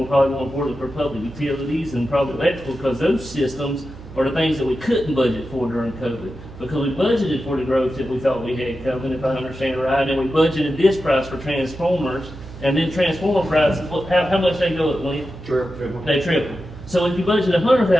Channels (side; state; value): right; noise; hum, 16 dB below the sound